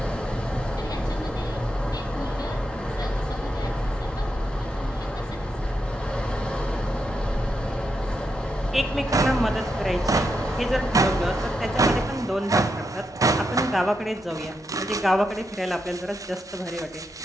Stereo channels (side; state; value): both; normal; correlation 0.84